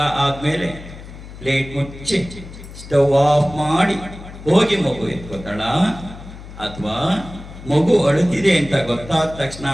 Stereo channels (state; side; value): noise; left; hum, 15 dB below the sound